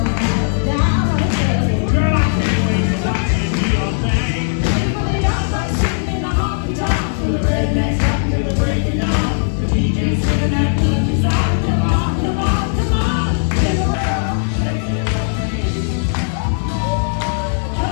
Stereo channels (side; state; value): right; silent; 63 dB below the other